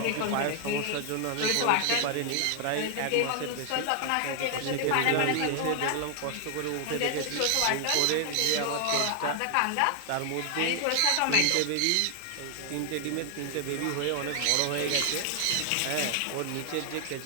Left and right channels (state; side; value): different; both; correlation 0.00